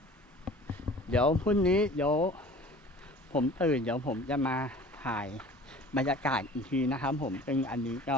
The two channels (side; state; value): both; normal; correlation 0.45